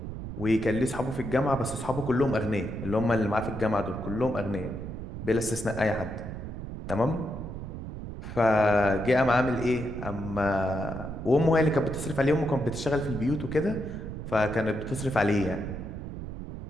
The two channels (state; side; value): noise; right; rumble, 8 dB below the sound